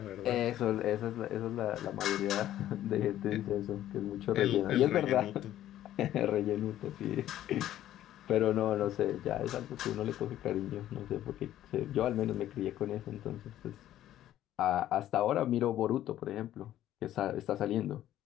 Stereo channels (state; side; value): quieter; right; 12.8 dB